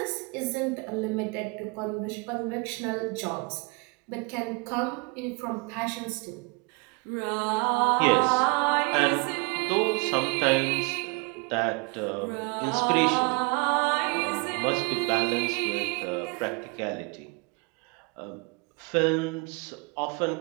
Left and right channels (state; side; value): quieter; left; 30.8 dB